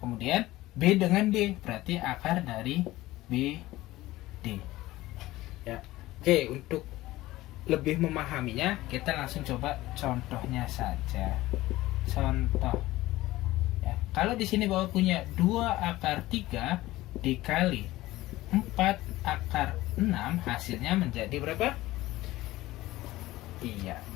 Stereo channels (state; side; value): quieter; right; 17.4 dB